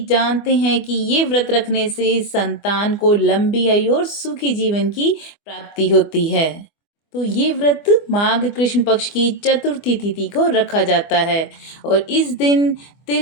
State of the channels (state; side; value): late; right; 24 ms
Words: जानते हैं कि ये व्रत रखने से संतान को लंबी आयु और सुखी जीवन की प्राप्ति होती है। तो ये व्रत माघ कृष्ण पक्ष की चतुर्थी तिथि को रखा जाता है और इस दिन